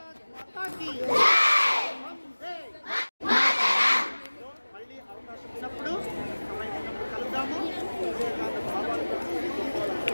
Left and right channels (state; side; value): inverted; both; correlation -1.00